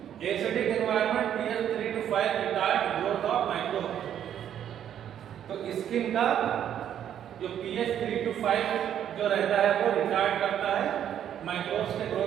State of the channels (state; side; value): quieter; left; 9.9 dB